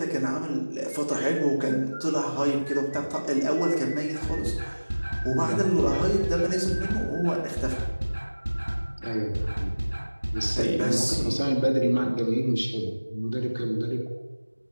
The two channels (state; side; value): inverted; both; correlation -1.00